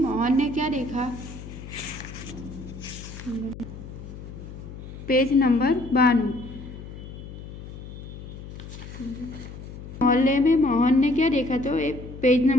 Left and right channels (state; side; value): noise; left; hum, 12 dB below the sound